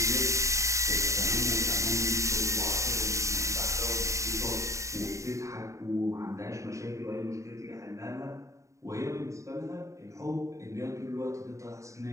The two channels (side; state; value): left; late; 0.15 ms